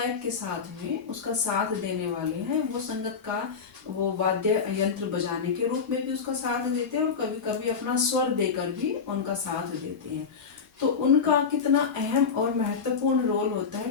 के साथ में उसका साथ देने वाले हैं वो संगतकार। वो वाद्य यंत्र बजाने के रूप में भी उसका साथ देते हैं और कभी कभी अपना स्वर देकर भी उनका साथ देते हैं। तो उनका कितना अहम और महत्वपूर्ण रोल होता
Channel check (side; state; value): right; quieter; 5.8 dB